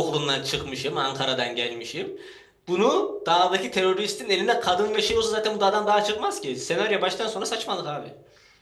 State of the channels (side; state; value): both; identical; correlation 1.00